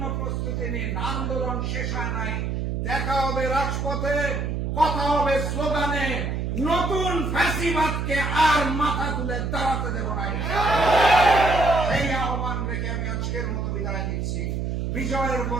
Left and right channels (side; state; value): right; noise; hum, 1 dB below the sound